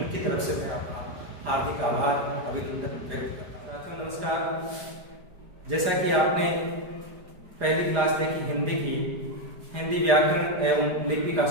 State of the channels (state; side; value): late; left; 4.9 ms